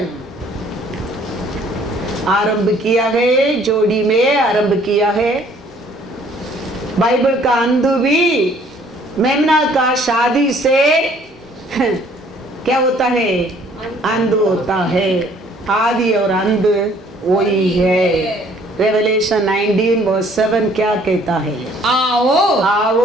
आरंभ किया है, जोड़ी में आरंभ किया है। बाइबल का अंधु भी मेमना का शादी से क्या होता है? अंधु होता है। आदि और अंध वही है। रेवलेशन 19 वर्स 7 क्या कहता है? आओ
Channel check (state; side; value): normal; both; correlation 0.59